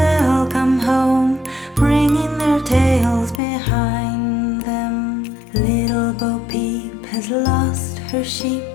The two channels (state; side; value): drops out; right; at 3.4 s